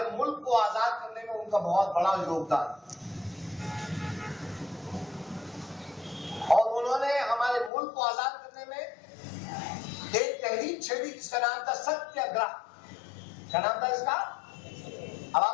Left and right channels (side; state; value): right; drops out; at 7.7 s